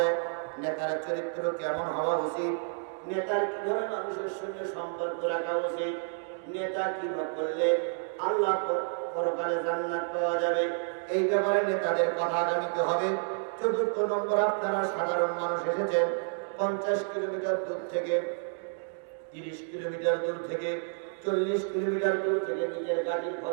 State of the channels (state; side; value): silent; left; digital silence